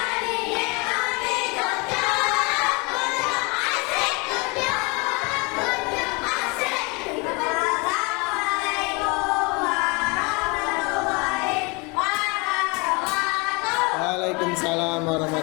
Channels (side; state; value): right; quieter; 28.9 dB